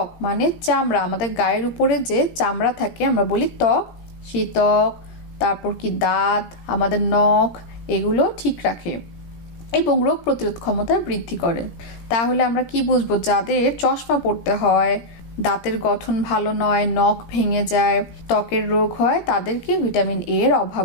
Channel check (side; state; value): right; late; 17 ms